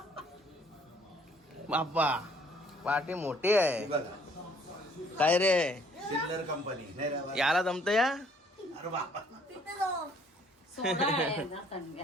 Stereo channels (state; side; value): normal; both; correlation 0.61